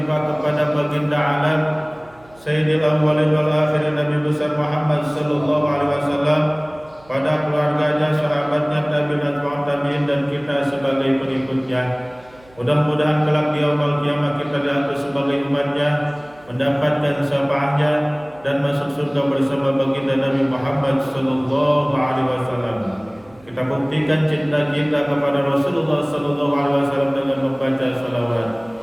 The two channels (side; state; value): right; noise; hum, 27 dB below the sound